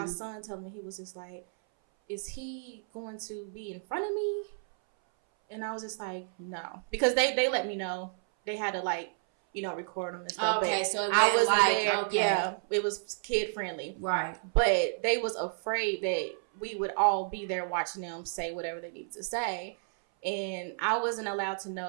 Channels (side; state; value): left; silent; 57 dB below the other